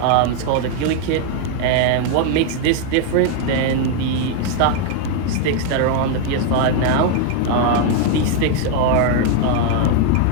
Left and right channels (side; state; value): both; different; correlation 0.00